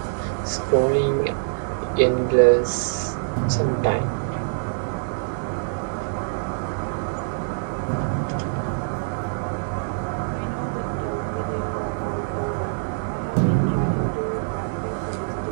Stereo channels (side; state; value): left; silent; digital silence